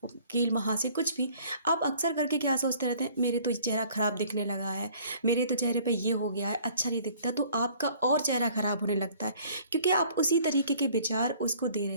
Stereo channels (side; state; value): both; inverted; correlation -0.55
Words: कील महासे, कुछ भी, आप अक्सर करके क्या सोचते रहते हैं, मेरे तो चेहरा खराब दिखने लगा है, मेरे तो चेहरे पे ये हो गया है, अच्छा नहीं दिखता, तो आपका और चेहरा खराब होने लगता है, क्योंकि आप उसी तरीके के विचार उसको दे